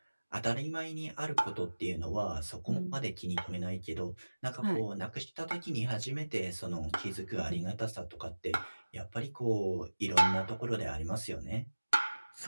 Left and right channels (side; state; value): both; inverted; correlation -1.00